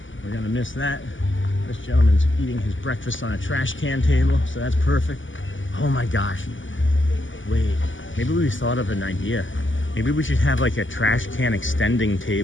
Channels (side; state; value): right; late; 0.56 ms